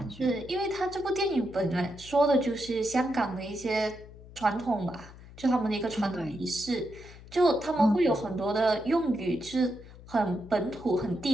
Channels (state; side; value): noise; left; hum, 18 dB below the sound